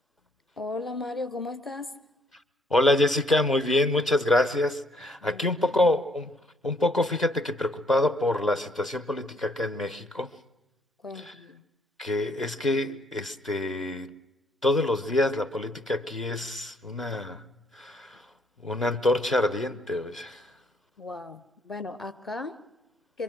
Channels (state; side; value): normal; both; correlation 0.67